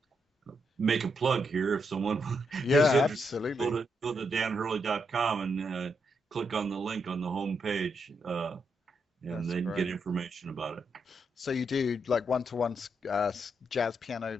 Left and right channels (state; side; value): normal; both; correlation 0.80